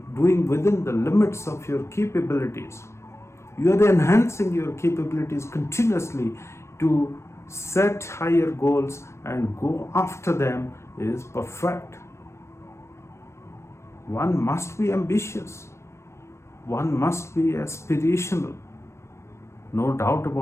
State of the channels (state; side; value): late; right; 0.13 ms